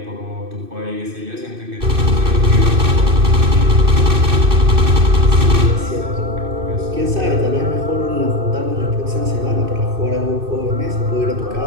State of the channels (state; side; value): late; left; 2.6 ms